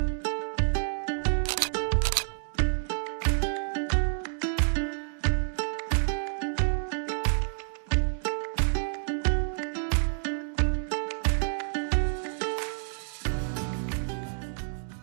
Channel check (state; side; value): silent; left; digital silence